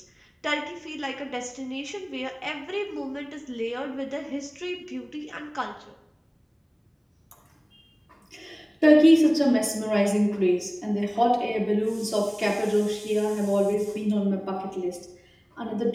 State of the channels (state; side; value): identical; both; correlation 1.00